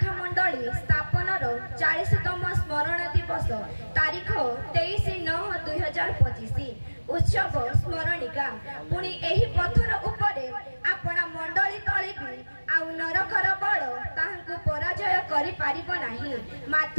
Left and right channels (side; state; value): both; inverted; correlation -1.00